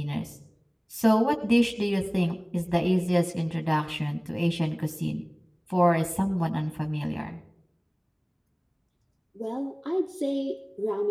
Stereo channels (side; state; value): both; identical; correlation 1.00